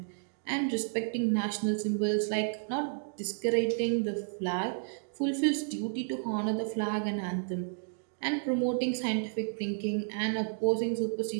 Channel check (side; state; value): left; silent; digital silence